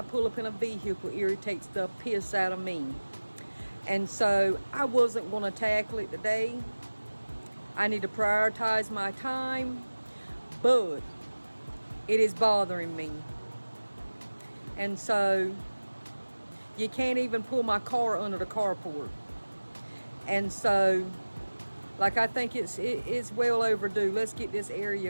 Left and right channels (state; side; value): inverted; both; correlation -1.00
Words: pull up in a vehicle irritates the piss out of me. And so I wasn't going to tackle it today. I need to prioritize my time, but it is bothering me. And so you can't even pull my car under the carport. And so, I think it's well overdue. Let's get this